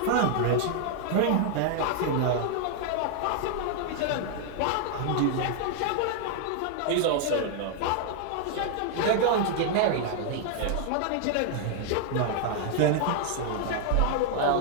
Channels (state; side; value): different; both; correlation 0.00